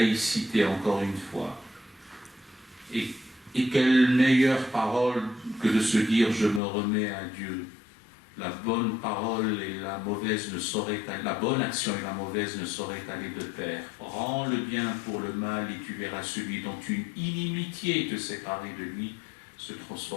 encore une fois. Et quelle meilleure parole que de se dire « je me remets à Dieu ». la bonne parole et la mauvaise ne sauraient aller, la bonne action et la mauvaise ne sauraient aller de pair. Rends le bien pour le mal et tu verras celui dont une inimitié te séparait de lui se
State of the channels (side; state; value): right; drops out; at 6.6 s